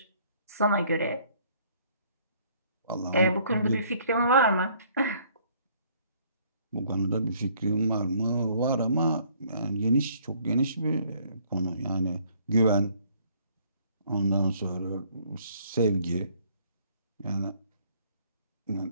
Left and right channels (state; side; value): inverted; both; correlation -0.62